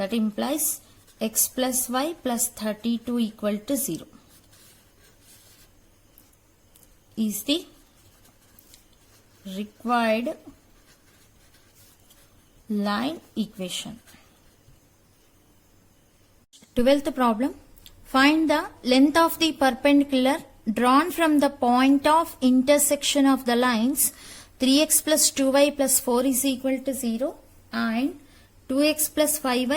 implies x plus y plus 32 equal to 0 is the required line equation. 12th problem. Find the length of the perpendicular drawn from the point of intersection of the lines 3x plus 2y plus 4 is equal to 0 and 2x plus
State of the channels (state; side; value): identical; both; correlation 1.00